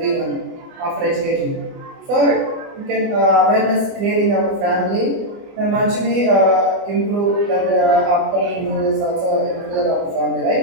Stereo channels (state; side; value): late; left; 24 ms